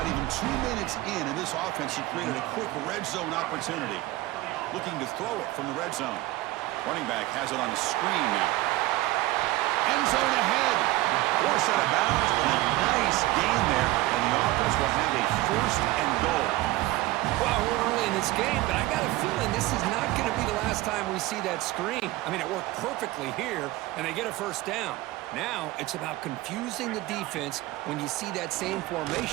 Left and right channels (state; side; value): quieter; left; 18.2 dB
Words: even 2 minutes in this offense, he created a quick red zone opportunity. Looking to throw it from the red zone. Running back has it on the screen now. End zone ahead. Force out of bounds, but a nice gain there, and the offense will have a first and goal. Well, we're early in this game, but I got a feeling this is not going to be the last time we see that screen. I mean, it worked perfectly here, and they get a first down. Now, it's about confusing the defense when you see that same